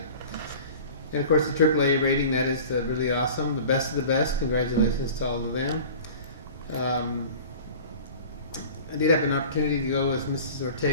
And of course, the AAA rating, that is really awesome. The best of the best. Congratulations to all of them. I did have an opportunity to go with Mrs.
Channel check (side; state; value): both; inverted; correlation -0.41